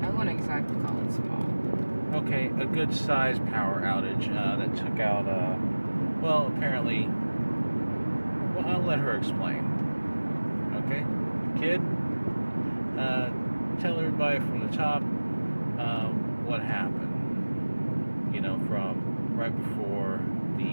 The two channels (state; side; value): inverted; both; correlation -1.00